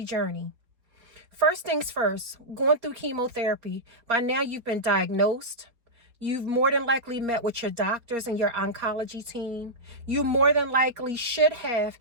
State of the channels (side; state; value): left; late; 4.2 ms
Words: journey. First things first, going through chemotherapy, by now you've been diagnosed. You've more than likely met with your doctors and your oncology team. You more than likely should have